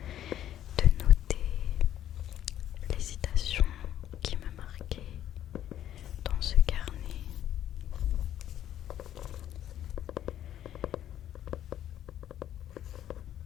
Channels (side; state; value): right; quieter; 11.4 dB